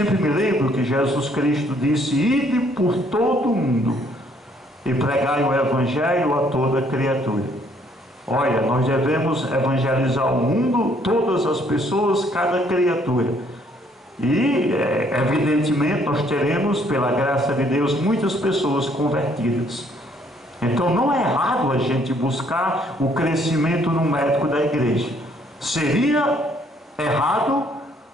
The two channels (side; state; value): both; normal; correlation 0.65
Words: me lembro que Jesus Cristo disse: ide por todo o mundo e pregai o evangelho a toda criatura. Olha, nós devemos evangelizar o mundo, todas as pessoas, cada criatura. E evidentemente nós teremos, pela graça de Deus, muitas pessoas convertidas. Então não é errado a gente buscar o crescimento numérico da igreja. Seria errado